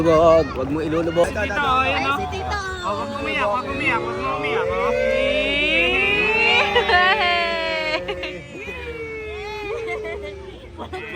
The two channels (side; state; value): both; identical; correlation 1.00